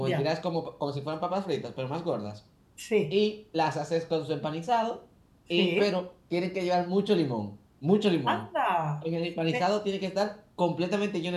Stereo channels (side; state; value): both; identical; correlation 1.00